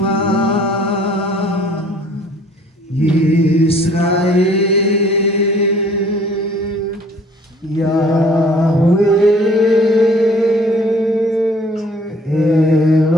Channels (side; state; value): both; normal; correlation 0.55